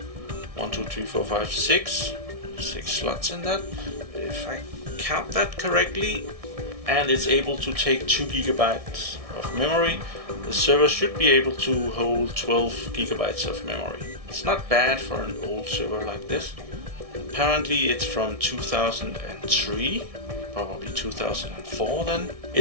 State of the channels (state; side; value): late; left; 1.6 ms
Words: 1, 2, 3, 4, 5, 6 slots in that, if I count that correctly, and it's able to take 2 gigabytes of memory. The server should be able to hold 12 gigabytes of memory. It's not bad for an old server like this. Apparently it's from 2003, probably 2004 then.